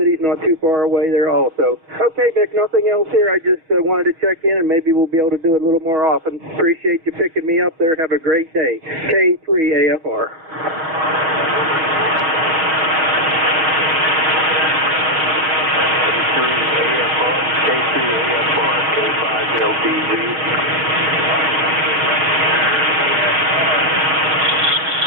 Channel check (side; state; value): left; late; 6.2 ms